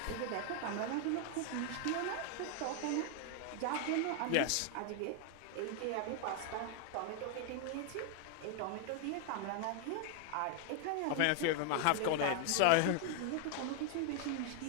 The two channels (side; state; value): both; different; correlation 0.00